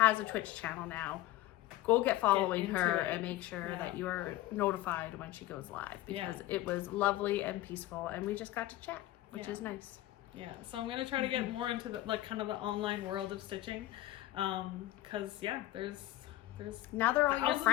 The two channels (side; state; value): right; quieter; 15.7 dB